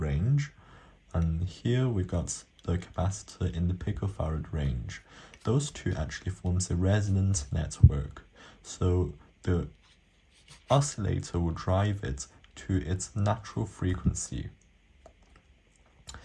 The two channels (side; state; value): both; identical; correlation 1.00